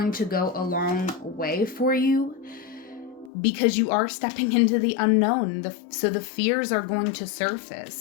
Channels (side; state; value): right; drops out; at 3.3 s